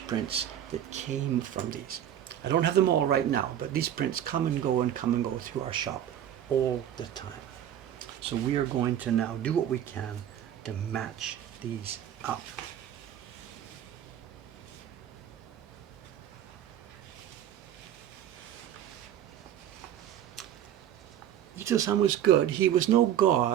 prints that came from these. I don't have them all right now, but these prints come and go through our shop all the time. So we are going to now do what we can to match these up. Ito-san was good. He was no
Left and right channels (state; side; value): quieter; left; 10.6 dB